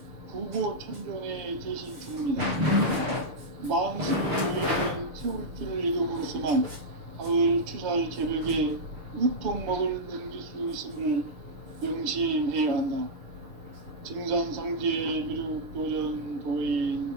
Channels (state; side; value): late; left; 6.6 ms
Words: 부고천존의 대신 주문이다. 만수를 보이는 태울주를 읽음으로써만 가을 추살 개벽의 으통먹을 넘길 수 있음을 명심해야 한다. 증산상제 미륵도전 도인